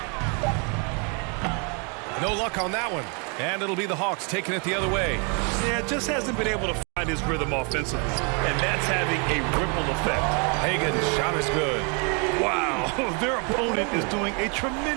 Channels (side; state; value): left; quieter; 35.6 dB